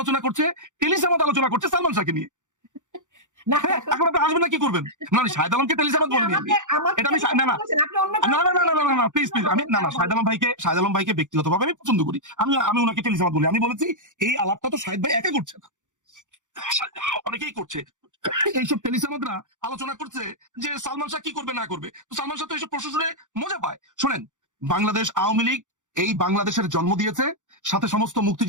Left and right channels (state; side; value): late; left; 0.86 ms